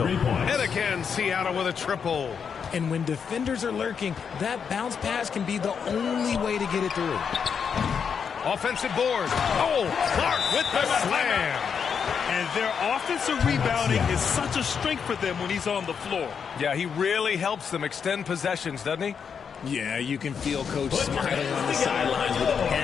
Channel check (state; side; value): quieter; right; 6.7 dB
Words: And again, Seattle with a triple. And when defenders are lurking, that bounce pass can be the only way to get it through. Offensive board. Oh, Clark with the slam. And their offensive rebounding is such a strength for them when he's on the floor. Yeah, he really helps them extend possessions, doesn't he? Yeah, you can feel Coach smiling on the sidelines with